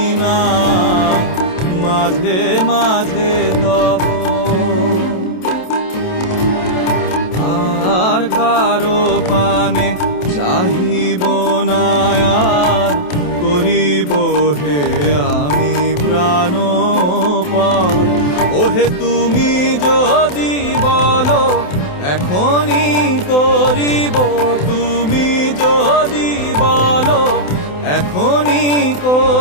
না মাঝে মাঝে তব আর কারো পানে চাহিব না আর করিব হে আমি প্রাণপণ ওহে তুমি যদি বলো এখনই করিব তুমি যদি বলো এখনই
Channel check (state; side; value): late; right; 28 ms